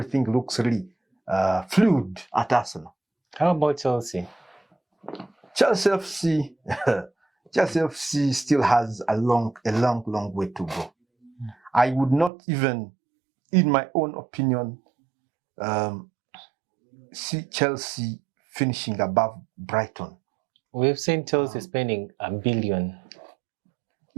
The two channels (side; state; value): left; drops out; at 12.3 s